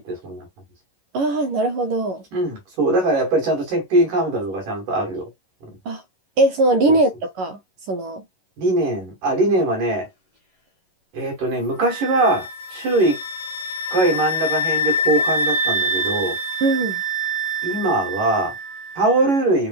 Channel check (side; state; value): left; late; 11 ms